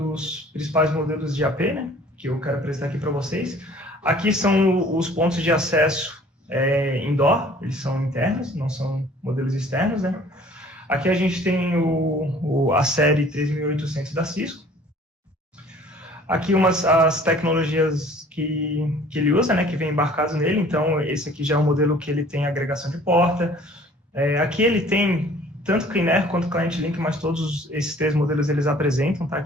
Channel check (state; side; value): normal; both; correlation 0.52